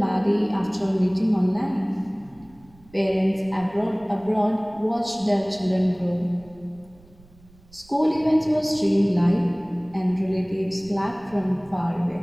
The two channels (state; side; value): noise; right; rumble, 27 dB below the sound